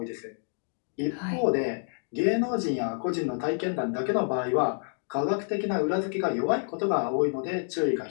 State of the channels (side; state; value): right; silent; 58 dB below the other